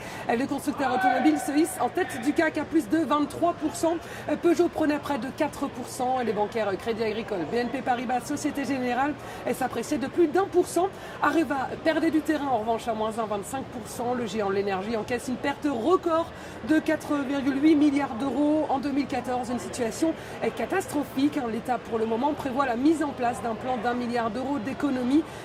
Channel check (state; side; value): identical; both; correlation 1.00